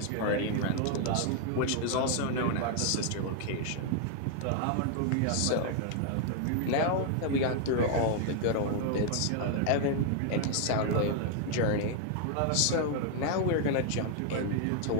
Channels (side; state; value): both; different; correlation 0.00